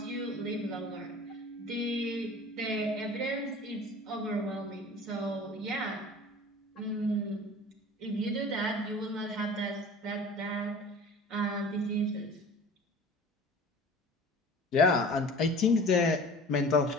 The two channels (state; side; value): normal; both; correlation 0.42